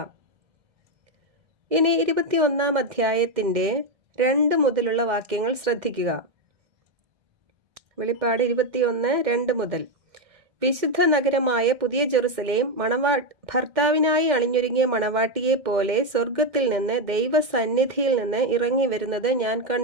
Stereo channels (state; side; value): late; left; 2.1 ms